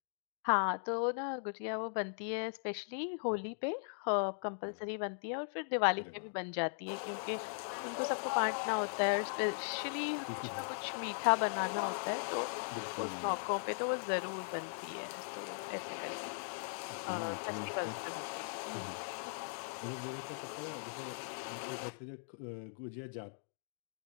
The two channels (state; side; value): silent; right; digital silence